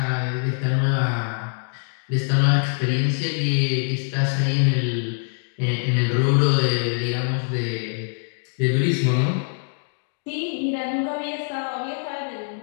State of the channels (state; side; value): silent; right; digital silence